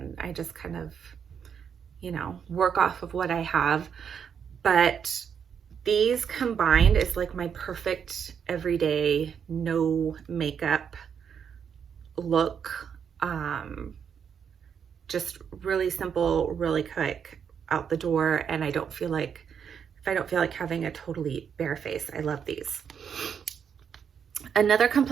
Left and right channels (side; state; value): left; quieter; 7.4 dB